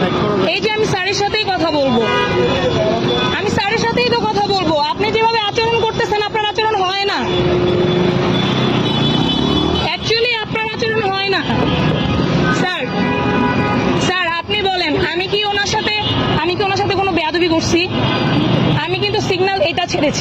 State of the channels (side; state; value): both; identical; correlation 1.00